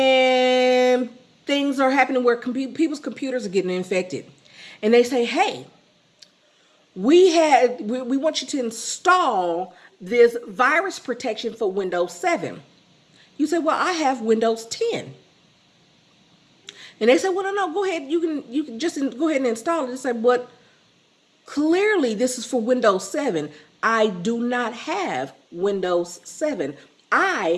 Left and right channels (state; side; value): identical; both; correlation 1.00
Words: things are happening where people's computers are getting infected. And they say, hey, we want you to install this virus protection for Windows 7. You say, well, I have Windows 10. And they say, well, no, go ahead. You can just go ahead and install it. They say, but clearly this is for Windows 7. I do not have Windows 7.